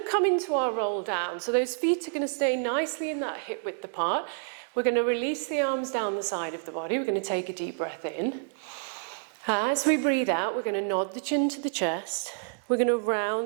to come into our roll down. So those feet are going to stay nicely in that hip width apart. We're going to release the arms down the side of the body. We're going to take a deep breath in. As we breathe out, we're going to nod the chin to the chest. We're going to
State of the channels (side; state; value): left; silent; digital silence